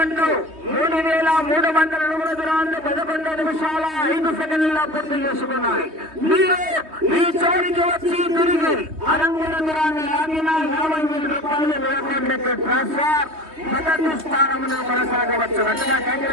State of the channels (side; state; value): left; late; 3.2 ms